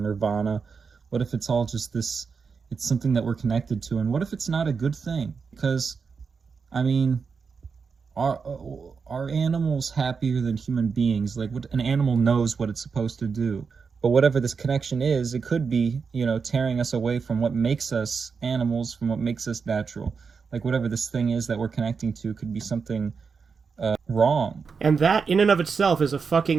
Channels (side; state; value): left; quieter; 5.4 dB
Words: what if it's all just this, it's something that we're connected to? And what if it's not a good thing? Because, I mean, are animals happier than human beings? Like, what, an animal knows what it's supposed to do. But whatever this connection is, it could be, you know, tearing us away from what makes us animals, from what makes us natural. Like, whatever this thing is that we're connecting to could be something wrong. And that in and of itself is a